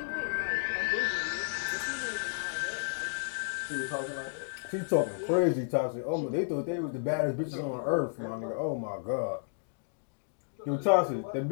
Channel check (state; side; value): silent; right; digital silence